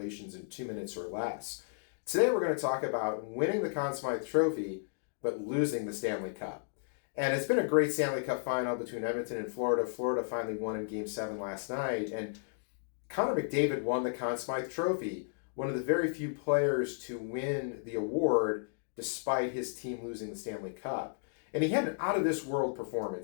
in 2 minutes or less. Today we're going to talk about winning the Conn Smythe Trophy, but losing the Stanley Cup. And it's been a great Stanley Cup final between Edmonton and Florida. Florida finally won in Game 7 last night, and Connor McDavid won the Conn Smythe Trophy, one of the very few players to win the award despite his team losing the Stanley Cup. And he had an out-of-this-world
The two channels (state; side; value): silent; right; digital silence